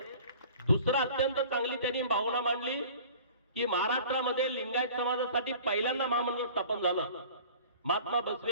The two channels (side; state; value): both; inverted; correlation -0.45